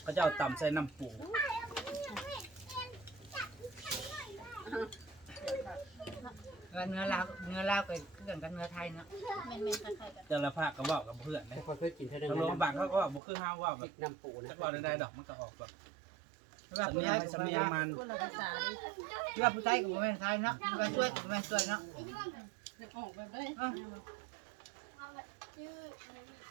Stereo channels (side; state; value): left; drops out; at 13.2 s